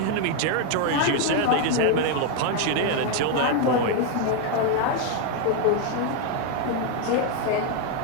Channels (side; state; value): both; different; correlation 0.01